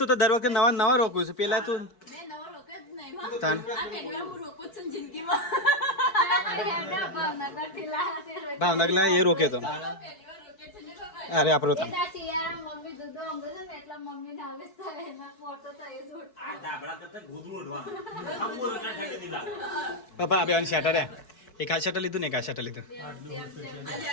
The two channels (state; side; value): late; right; 4.6 ms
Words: તો દર વખતે નવા નવા રોકું છું. પેલા તું ભાવનગર લા એ રોકે તો અરે આપણો તો પપ્પા બે શેટર એક આ શેટર લીધું ને એક આ શેટર લીધું.